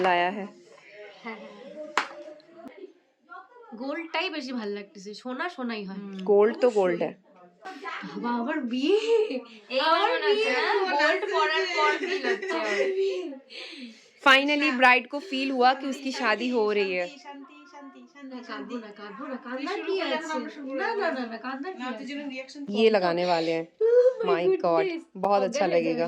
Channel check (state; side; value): identical; both; correlation 1.00